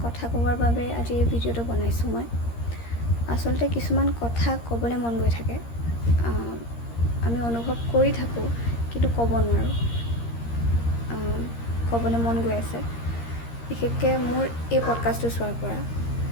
কথা ক'বৰ বাবে আজি এই ভিডিঅ'টো বনাইছোঁ মই। আচলতে কিছুমান কথা ক'বলৈ মন গৈ থাকে, আমি অনুভৱ কৰি থাকোঁ কিন্তু ক'ব নোৱাৰোঁ। ক'বলৈ মন গৈ আছে, বিশেষকৈ মোৰ এই পডকাষ্টটো চোৱাৰ পৰা।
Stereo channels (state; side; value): late; right; 13 ms